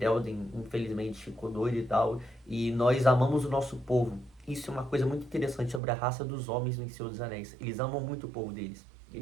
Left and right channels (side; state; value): left; drops out; at 5.8 s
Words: infelizmente, ficou doido e tal, e nós amamos o nosso povo. Isso é uma coisa muito interessante sobre a raça dos homens no Senhor dos Anéis. Eles amam muito o povo deles.